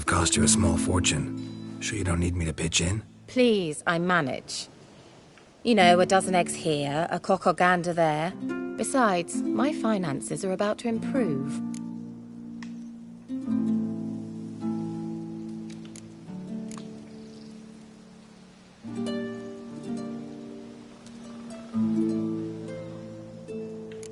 cost you a small fortune. Sure you don't need me to pitch in? Please, I manage. You know, a dozen eggs here, a cock or gander there. Besides, my finances are about to improve.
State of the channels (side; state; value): both; identical; correlation 1.00